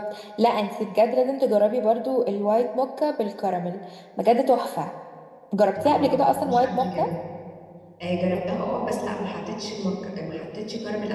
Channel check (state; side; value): identical; both; correlation 1.00